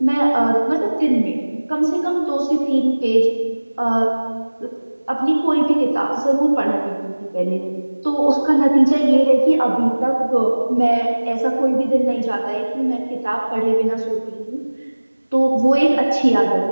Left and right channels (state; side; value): inverted; both; correlation -1.00